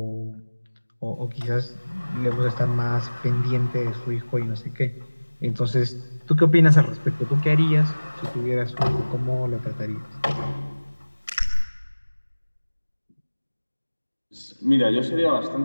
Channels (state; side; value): inverted; both; correlation -1.00